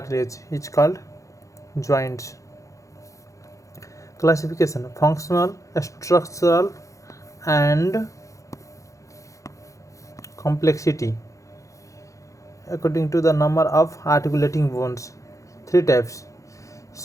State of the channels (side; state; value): right; late; 0.15 ms